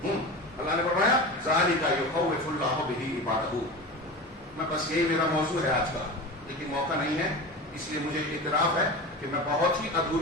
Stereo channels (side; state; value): both; normal; correlation 0.29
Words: اللہ نے فرمایا ذالک یخوف اللہ بہ عبادہ۔ میں بس یہی میرا موضوع ہے آج کا، لیکن موقع نہیں ہے، اس لیے مجھے اعتراف ہے کہ میں بہت ہی